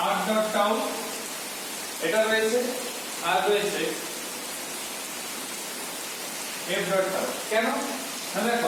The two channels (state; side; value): identical; both; correlation 1.00